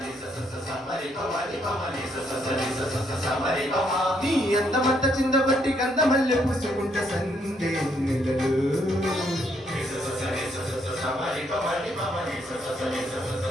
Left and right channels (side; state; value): both; normal; correlation 0.72